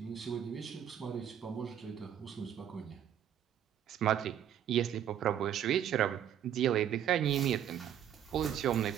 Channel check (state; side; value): quieter; left; 9.9 dB